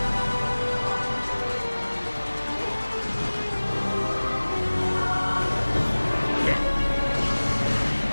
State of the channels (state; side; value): inverted; both; correlation -1.00